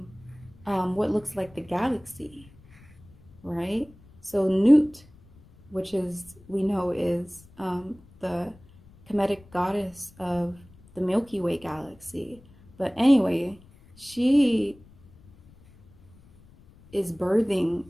what looks like the galaxy, right? So Nut, which we know is the Kemetic goddess of the Milky Way galaxy. But anyway, she is birthing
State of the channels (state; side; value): noise; left; rumble, 25 dB below the sound